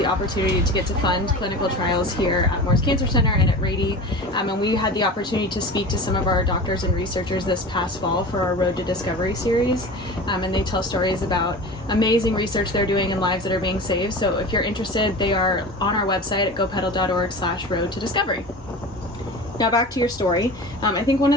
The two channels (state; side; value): normal; both; correlation 0.33